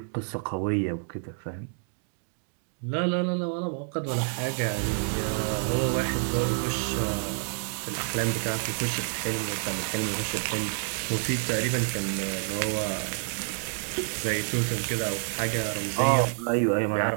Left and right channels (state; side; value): silent; left; 59 dB below the other